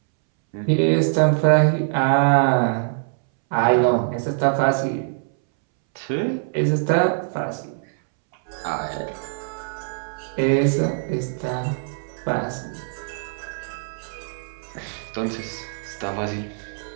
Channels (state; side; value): silent; left; 63 dB below the other